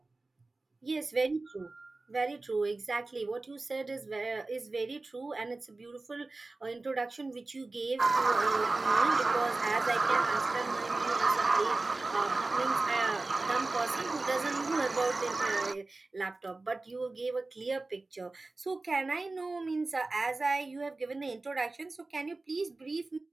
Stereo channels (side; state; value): left; quieter; 3.3 dB